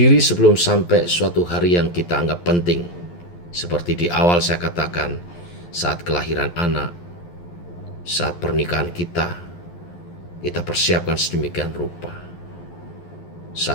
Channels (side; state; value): right; late; 11 ms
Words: sebelum sampai suatu hari yang kita anggap penting. Seperti di awal saya katakan, saat kelahiran anak, saat pernikahan kita persiapkan sedemikian rupa.